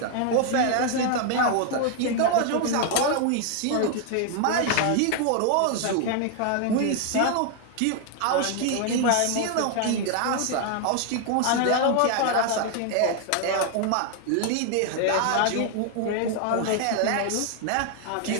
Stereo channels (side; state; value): both; different; correlation 0.00